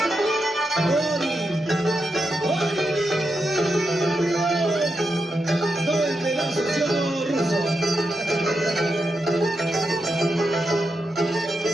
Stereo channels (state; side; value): normal; both; correlation 0.86